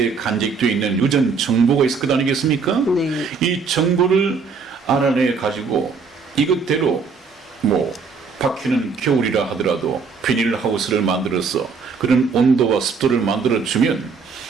간직되어 있는 유전 정보가 있을 것 아니겠습니까? 네. 이 정보를 알아내 가지고 이것대로 뭐 바퀴는 겨울이라 하더라도 비닐하우스를 만들어서 그런 온도와 습도를 만들어주면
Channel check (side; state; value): left; quieter; 5.1 dB